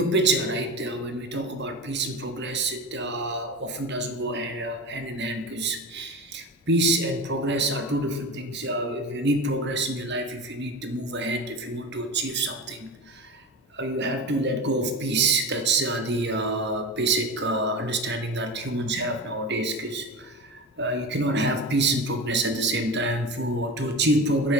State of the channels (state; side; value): normal; both; correlation 0.27